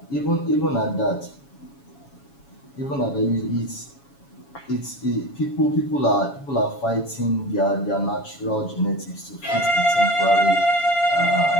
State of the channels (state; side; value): late; right; 7.2 ms